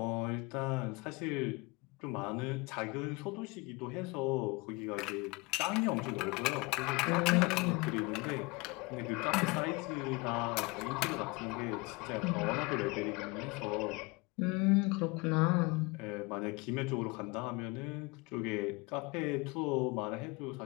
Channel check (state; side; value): quieter; right; 25.7 dB